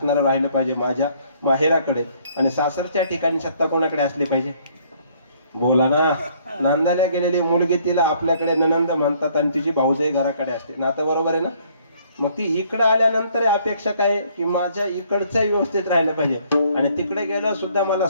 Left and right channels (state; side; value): inverted; both; correlation -0.63